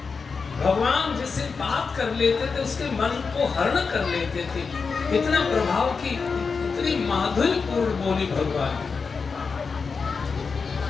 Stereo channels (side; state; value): right; quieter; 5.0 dB